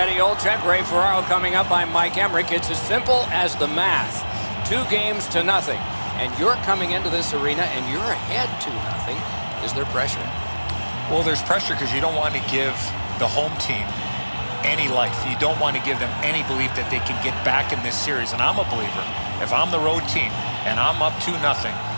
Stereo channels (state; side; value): inverted; both; correlation -1.00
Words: Olczyk, Ray Ferraro coming up, I'm Mike Emmerich. It's as simple as the math. 2 games to nothing. And you're coming into this arena and you're ahead 2-0. Is there pressure? Well, there's pressure because you don't want to give the home team any life. You don't want to give them any belief that they can get back in this series. And I'm a believer, if I'm the road team and I'm up 2-0,